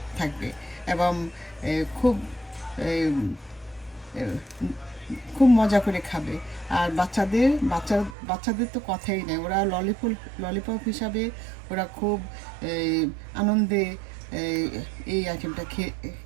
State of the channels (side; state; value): left; drops out; at 8.2 s